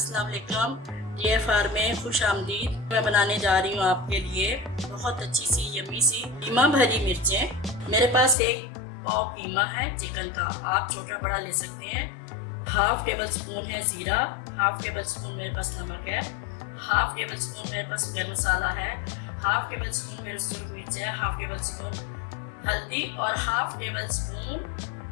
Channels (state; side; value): drops out; right; at 8.3 s